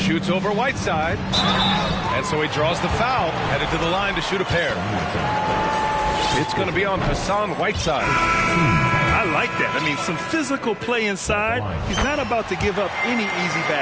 over Whiteside. And so he draws the foul. Headed to the line to shoot a pair. It's going to be on Hassan Whiteside. I like that. I mean, some physical play inside. He's not about to give up any easy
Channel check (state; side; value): identical; both; correlation 1.00